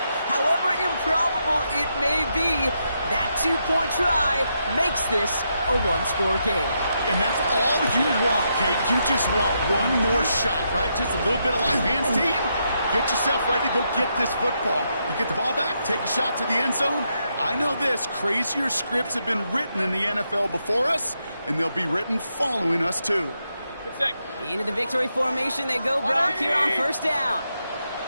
However improbable it may be, that two-point try makes this a one-score game. And that's all you want, Kate. You just want one more shot, right? Just a little bit of life hands, team. Get yourself ready to go get this football. You get the ball back, take a shot to the end zone. I know this, crazier scripts have been written in the NFL before us, and they'll be written following us, too. Into the victory formation they go, Brock, here on first down.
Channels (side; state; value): both; inverted; correlation -0.81